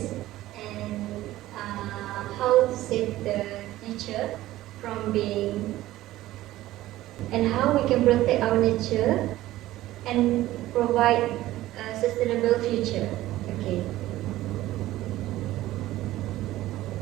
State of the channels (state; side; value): quieter; left; 15.7 dB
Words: and how to save the nature from being, and how we can protect our nature and provide a sustainable future.